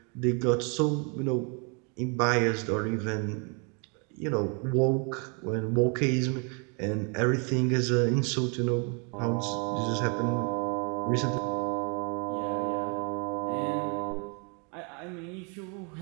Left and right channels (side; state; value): left; quieter; 35.6 dB